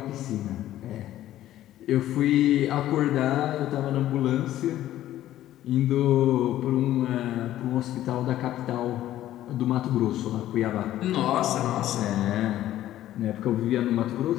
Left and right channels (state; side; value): quieter; right; 13.4 dB